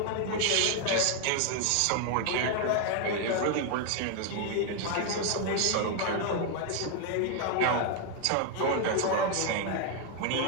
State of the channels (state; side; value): different; both; correlation 0.01